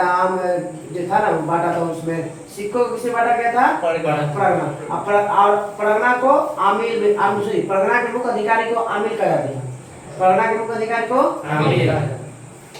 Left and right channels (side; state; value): both; identical; correlation 1.00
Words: जो था ना बांटा था, उसमें सिक्कों को किसे बांटा गया था? परगना। और परगना को आमिल में परगना के मुख्य अधिकारी को आमिल कहा जाता था। परगना के मुख्य अधिकारी को आमिल।